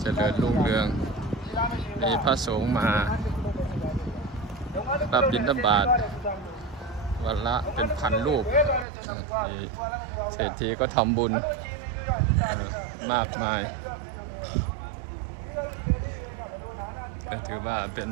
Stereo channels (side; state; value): left; drops out; at 8.8 s